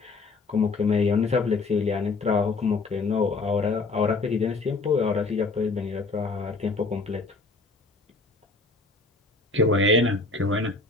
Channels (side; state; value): right; quieter; 3.8 dB